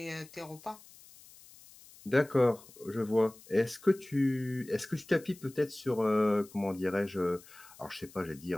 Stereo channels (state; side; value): noise; left; hiss, 22 dB below the sound